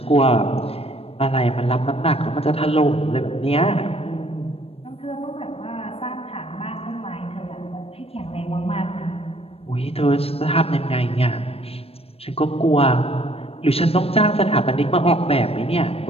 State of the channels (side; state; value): right; late; 0.28 ms